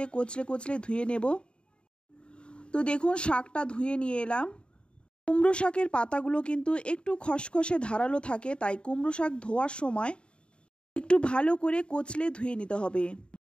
কচলে কচলে ধুয়ে নেব। তো দেখুন, শাকটা ধুয়ে নিয়ে এলাম। কুমড়ো শাকের পাতাগুলো কিন্তু একটু খসখসে ধারালো থাকে, তাই কুমড়ো শাক ধোয়ার সময় একটু ভালো করে কচলে ধুয়ে নিতে হবে।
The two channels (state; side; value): late; right; 0.054 ms